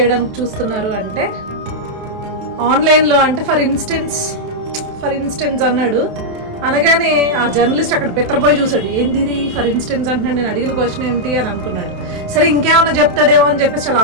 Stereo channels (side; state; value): left; late; 28 ms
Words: చూస్తున్నారు అంటే, ఆన్లైన్లో అంటే ఫర్ ఇన్స్టెన్స్ అన్నాడు. అనగానే ఆ జర్నలిస్ట్ అక్కడ పెత్తరపోయి చూశాడు, ఏంది ఇది ఫర్ ఇన్స్టెన్స్ అంటున్నాడు, నేను అడిగిన క్వశ్చన్ ఏంటి అని అనుకున్నాడు. సరే ఇంకేమన్నా చెప్తాడేమో అని చెప్పేసి చాలా